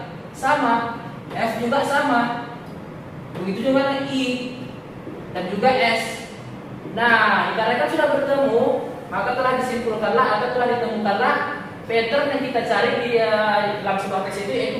sama, F juga sama. Begitu juga I dan juga S. Nah, dikarenakan sudah bertemu, maka telah disimpulkanlah atau telah ditemukanlah pattern yang kita cari di dalam sebuah teks itu, yaitu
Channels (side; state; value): both; identical; correlation 1.00